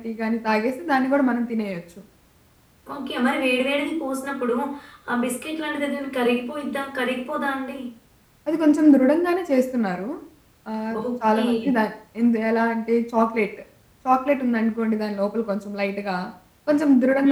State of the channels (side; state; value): both; identical; correlation 1.00